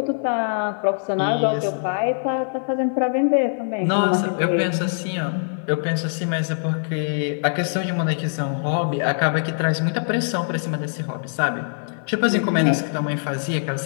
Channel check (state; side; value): silent; right; 61 dB below the other